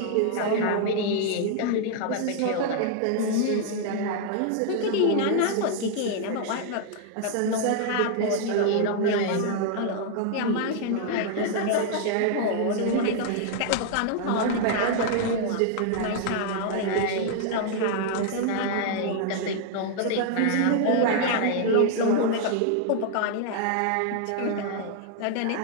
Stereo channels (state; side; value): different; both; correlation 0.00